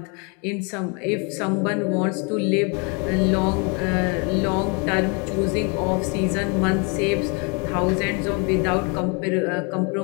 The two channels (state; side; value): quieter; right; 33.6 dB